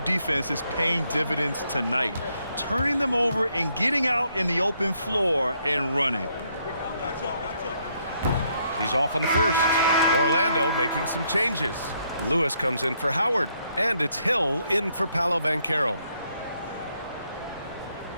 is paying dividends tonight, turning them over and getting out in the open floor and running. He's off on the first. Orlando making some changes. Lewis comes in for Howard, and it's Hill in for Paolo Banchero.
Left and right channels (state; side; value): inverted; both; correlation -0.73